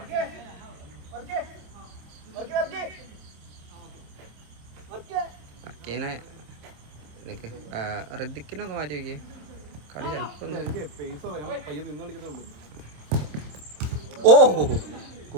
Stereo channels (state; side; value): late; left; 27 ms